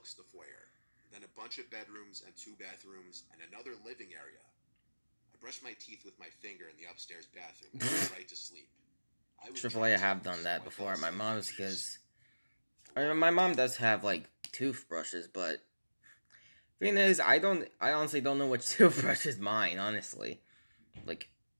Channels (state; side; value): inverted; both; correlation -1.00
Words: the foyer, then a bunch of bedrooms and 2 bathrooms and another living area. I brushed my teeth with my finger in the upstairs bathroom and went right to sleep. I have done that before at my mom's because my mom does have like toothbrushes, but thing is, I honestly don't know which toothbrush is mine. Honestly, like